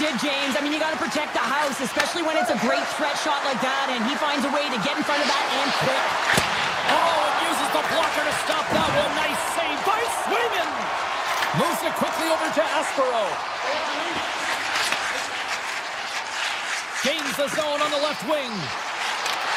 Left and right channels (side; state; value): both; identical; correlation 1.00